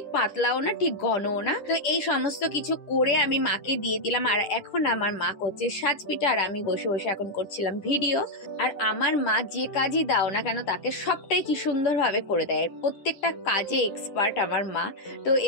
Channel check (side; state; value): right; late; 10 ms